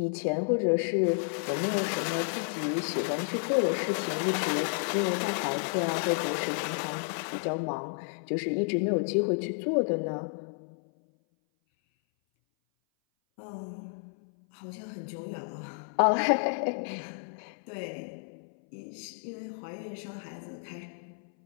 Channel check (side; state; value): right; silent; 57 dB below the other